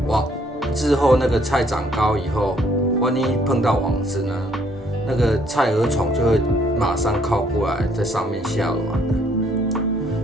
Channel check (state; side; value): normal; both; correlation 0.65